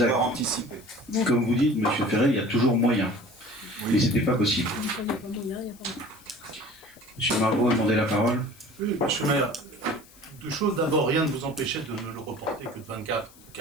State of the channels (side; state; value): left; noise; hiss, 24 dB below the sound